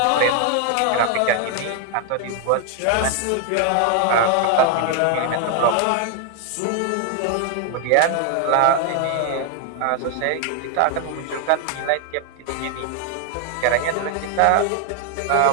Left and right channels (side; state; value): both; different; correlation 0.00